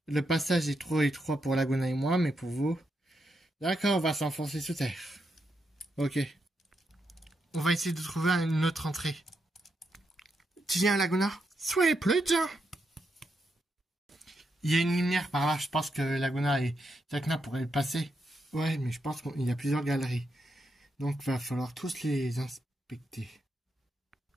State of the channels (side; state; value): both; normal; correlation 0.82